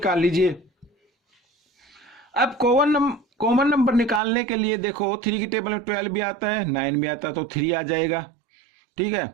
लीजिए। अब कॉमन नंबर निकालने के लिए देखो 3 की टेबल में 12 भी आता है, 9 भी आता है, तो 3 आ जाएगा। ठीक है,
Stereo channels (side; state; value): left; drops out; at 4.2 s